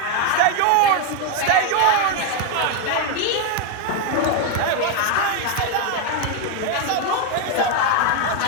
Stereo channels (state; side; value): different; both; correlation 0.01